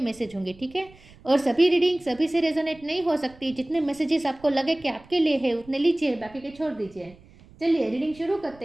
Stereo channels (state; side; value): noise; right; rumble, 24 dB below the sound